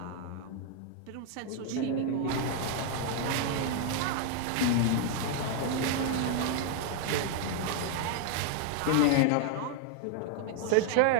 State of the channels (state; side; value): different; both; correlation 0.00